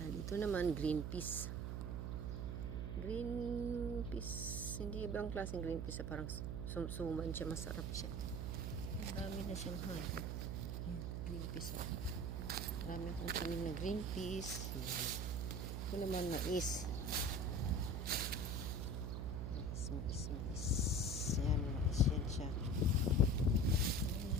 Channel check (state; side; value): noise; right; hum, 2 dB below the sound